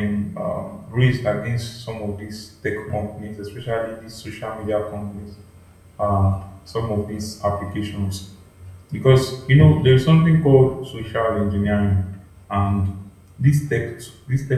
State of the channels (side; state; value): both; identical; correlation 1.00